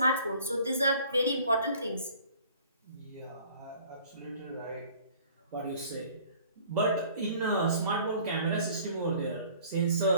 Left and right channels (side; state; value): both; inverted; correlation -0.52